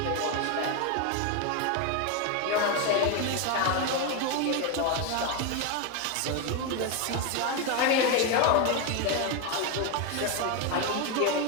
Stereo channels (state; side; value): different; both; correlation 0.02